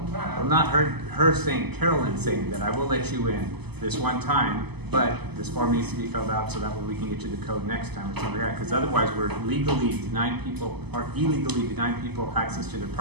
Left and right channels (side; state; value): left; late; 0.99 ms